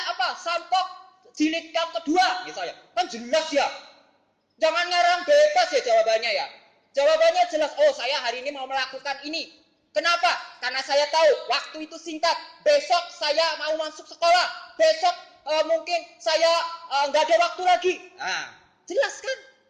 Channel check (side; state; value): both; identical; correlation 1.00